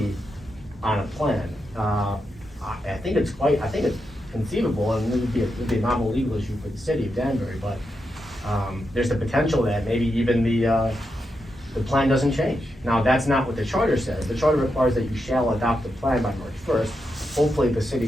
on a plan. I think it's conceivable, and it would be a novel legal issue for the city of Danbury, but, there's the potential that maybe even the plan doesn't change. Now, that's not what the charter says. The charter requires that you shall adopt the plan by March first. Hopefully, the city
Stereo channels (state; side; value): normal; both; correlation 0.86